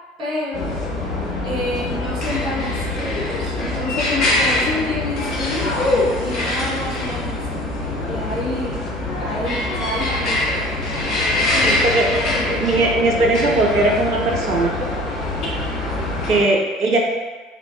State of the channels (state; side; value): normal; both; correlation 0.46